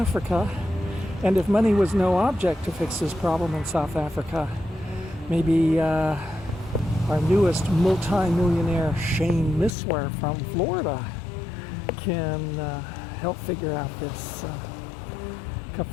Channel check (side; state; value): right; drops out; at 9.7 s